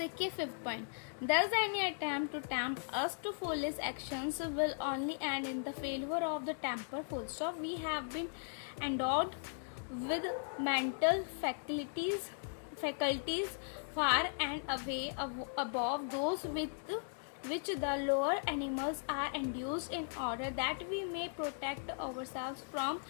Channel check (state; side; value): silent; right; digital silence